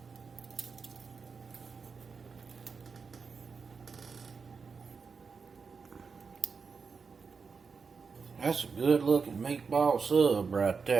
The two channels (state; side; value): quieter; left; 5.2 dB